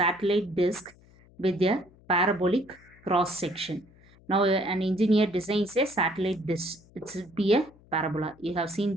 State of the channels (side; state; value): left; noise; hum, 27 dB below the sound